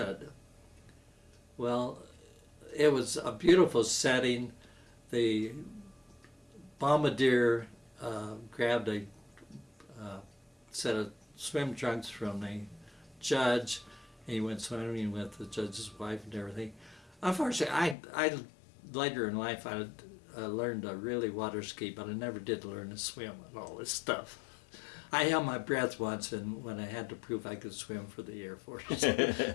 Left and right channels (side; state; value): right; drops out; at 17.9 s